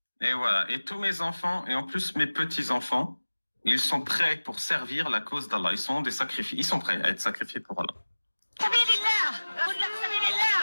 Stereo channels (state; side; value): inverted; both; correlation -1.00